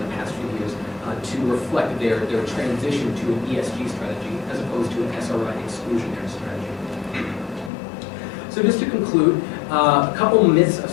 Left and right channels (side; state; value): right; drops out; at 7.7 s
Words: past few years to reflect their transition to an ESG strategy as opposed to an SRI exclusionary strategy. So just to conclude, a couple myths of